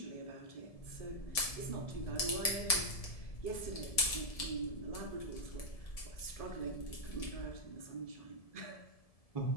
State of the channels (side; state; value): right; late; 1.7 ms